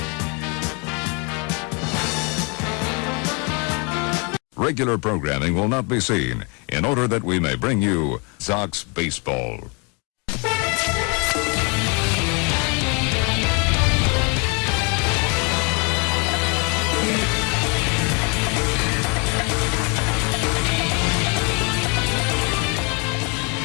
Regular programming will not be seen in order that we may bring you Sox Baseball.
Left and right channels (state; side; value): quieter; right; 32.7 dB